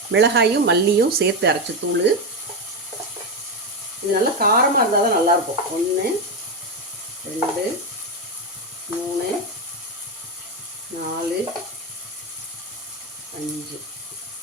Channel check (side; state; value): both; normal; correlation 0.10